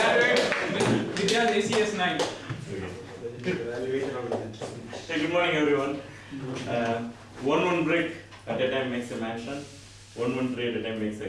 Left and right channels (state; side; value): identical; both; correlation 1.00